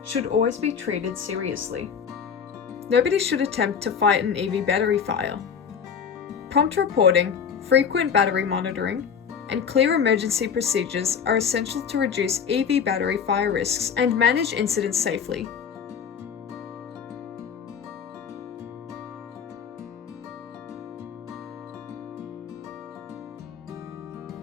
should always be treated seriously. Nobody should attempt to fight an EV battery fire. Prompt reporting, frequent battery monitoring, and clear emergency procedures are essential to reduce EV battery fire risks and manage incidents safely.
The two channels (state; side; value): quieter; right; 7.0 dB